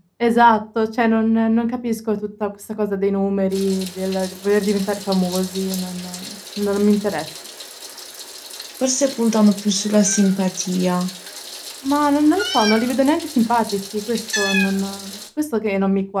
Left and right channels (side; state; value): both; identical; correlation 1.00